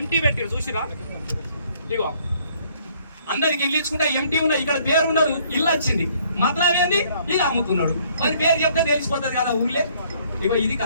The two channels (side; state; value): both; inverted; correlation -0.63